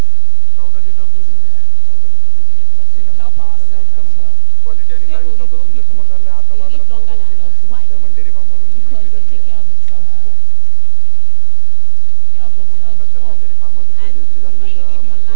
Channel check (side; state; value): both; different; correlation 0.00